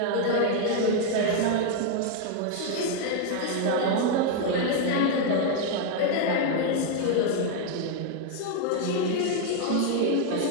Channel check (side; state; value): both; different; correlation 0.00